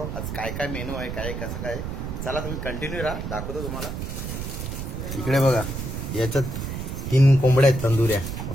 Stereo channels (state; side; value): noise; right; rumble, 5 dB below the sound